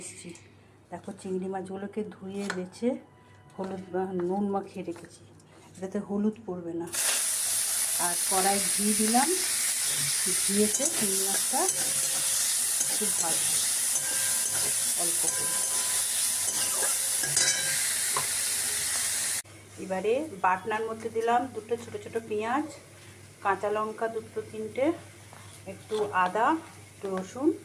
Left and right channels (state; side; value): identical; both; correlation 1.00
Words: এসেছি। দেখো, চিংড়ি মাছগুলোকে ধুয়ে বেছে হলুদ নুন মাখিয়ে রেখেছি, এটাতে হলুদ পড়বে না। আর কড়াই ঘি দিলাম, ঘিয়েতে চিংড়ি মাছটা খুব ভালো অল্প করে। এবারে বাটনার মধ্যে দিলাম দুটো ছোটো ছোটো পেঁয়াজ, কাঁচা লঙ্কা দুটো তিনটে, একটু আদা, একটু রসুন